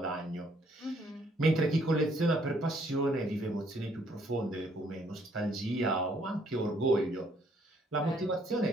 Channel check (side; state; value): both; normal; correlation 0.66